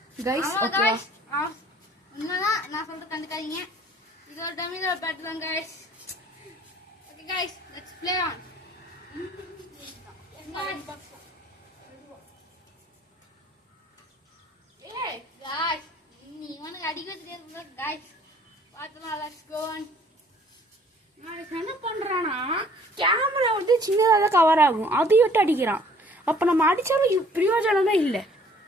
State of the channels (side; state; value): both; normal; correlation 0.56